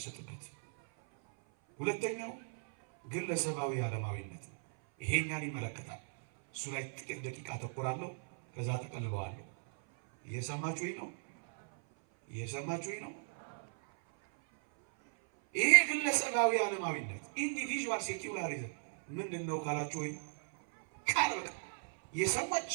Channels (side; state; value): left; silent; 53 dB below the other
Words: ሁለተኛው ግለሰባዊ ዓለማዊነት ነው። ይሄኛን ይመለከታል። እሱ ላይ ጥቂት ደቂቃ አተኩራለሁ፣ ከዛ ተቀልበዋለሁ። እየሰማችሁኝ ነው? እየሰማችሁኝ ነው? ይሄ ግለሰባዊ ዓለማዊነት ኢንዲቪዥዋል ሴኩላሪዝም ምንድን ነው ካላችሁ ወይ ቃል በቃ የሰዎች